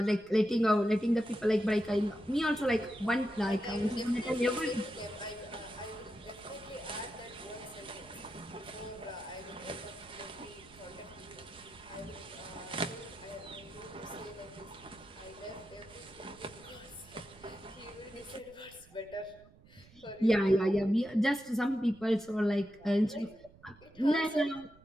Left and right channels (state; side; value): noise; right; rumble, 24 dB below the sound